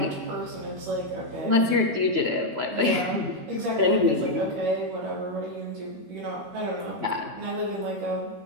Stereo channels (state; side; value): late; left; 13 ms